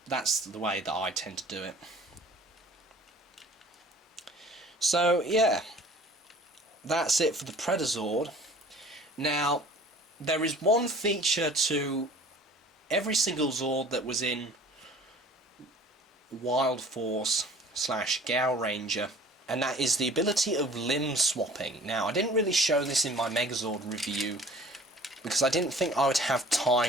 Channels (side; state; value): both; normal; correlation 0.48